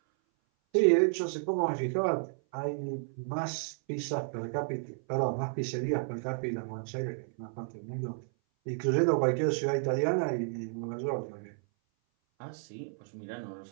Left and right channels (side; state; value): left; silent; 56 dB below the other